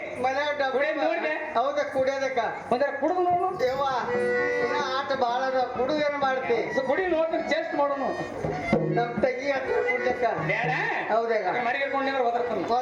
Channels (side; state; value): both; identical; correlation 1.00